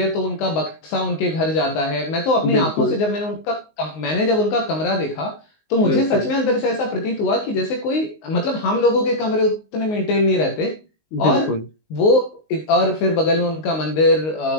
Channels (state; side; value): late; right; 19 ms